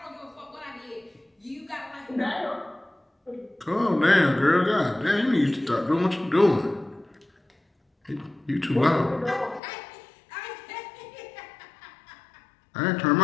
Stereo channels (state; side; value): drops out; right; at 9.6 s